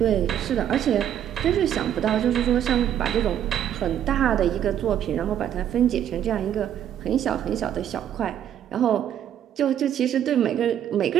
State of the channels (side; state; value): left; quieter; 10.1 dB